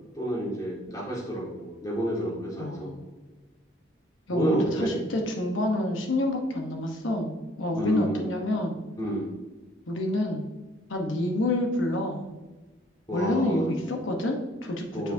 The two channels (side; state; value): both; normal; correlation 0.60